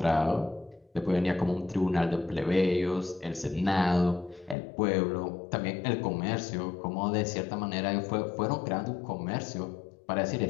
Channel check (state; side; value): drops out; right; at 4.5 s